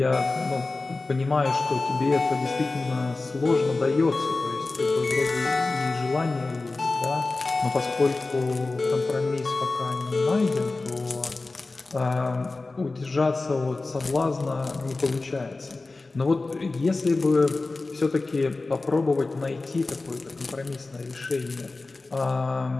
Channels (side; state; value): right; quieter; 3.4 dB